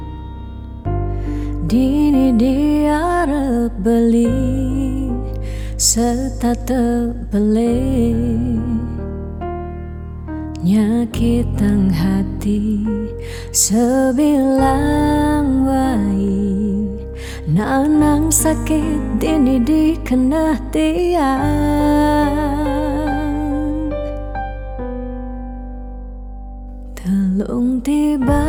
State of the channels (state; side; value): identical; both; correlation 1.00